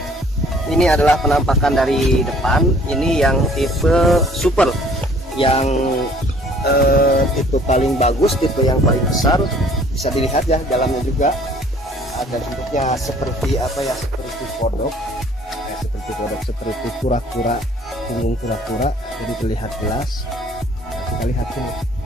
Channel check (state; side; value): normal; both; correlation 0.56